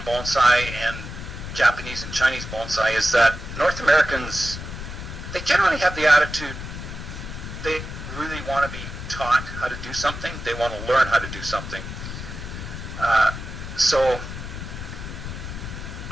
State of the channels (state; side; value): noise; left; rumble, 8 dB below the sound